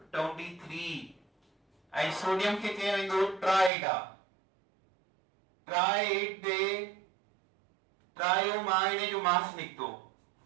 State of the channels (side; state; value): left; drops out; at 3.7 s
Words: 23 ऐं सोडियम खे चयो वेंदो ट्राइड आहे। ट्राइड दे ट्रायो मां इन जो मास निकतो